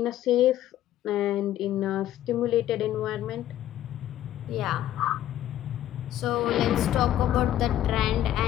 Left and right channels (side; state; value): right; quieter; 12.5 dB